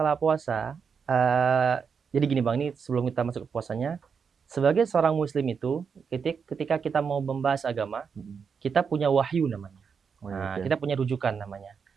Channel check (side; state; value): left; quieter; 6.2 dB